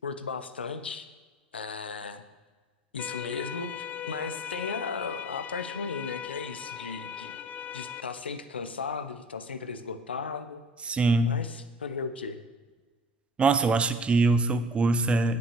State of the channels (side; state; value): both; normal; correlation 0.46